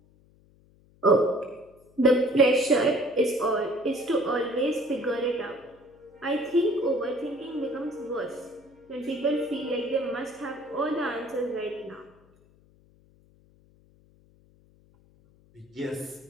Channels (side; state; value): left; noise; hum, 30 dB below the sound